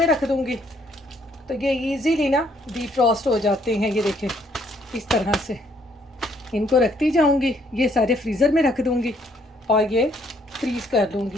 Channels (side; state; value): both; normal; correlation 0.67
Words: रख दूँगी तो ये ईज़िली ना डिफ्रॉस्ट हो जाते हैं। ये देखें इस तरह से इनको रखती जाऊँगी, ये सारे फ्रीज़र में रख दूँगी और ये फ्रीज़ कर लूँगी